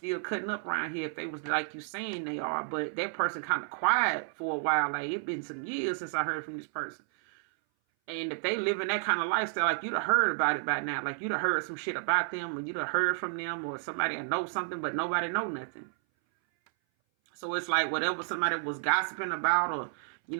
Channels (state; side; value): silent; left; 57 dB below the other